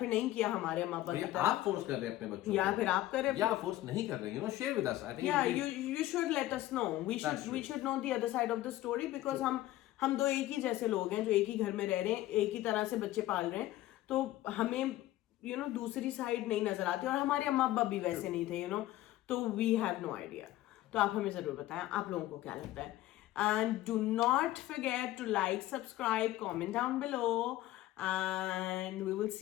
नहीं किया हमारे अम्मा अब्बा की तरह. आप फोर्स कर रहे हैं अपने बच्चों को या फिर आप कर रहे हैं या फोर्स नहीं कर रहे हैं. Share with us. I think you should let us know. We should know the other side of the story because हम दो एक ही जैसे लोग हैं जो एक ही घर में रह रहे हैं, एक ही तरह से बच्चे पाल रहे हैं, तो हमें दूसरी साइड नहीं नजर आती और हमारे अम्मा अब्बा भी वैसे नहीं थे तो वी हैव नो आइडिया. तो आप हमें जरूर बताएं आप लोगों को क्या लगता है. And do not forget to like, subscribe, comment down below and we will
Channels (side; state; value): right; quieter; 15.3 dB